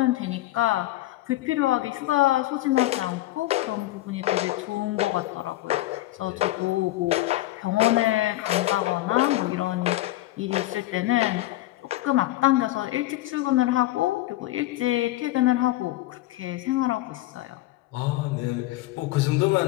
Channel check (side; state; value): right; quieter; 16.7 dB